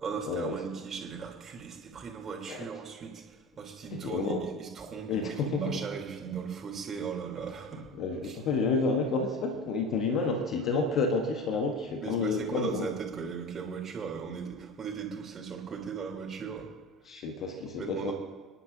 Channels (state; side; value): normal; both; correlation 0.32